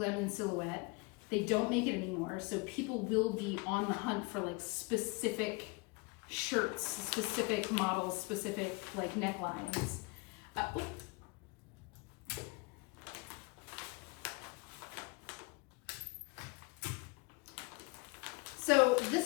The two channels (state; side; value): quieter; right; 28.7 dB